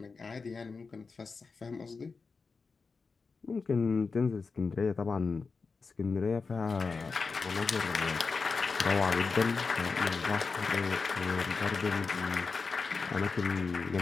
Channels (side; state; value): right; quieter; 4.6 dB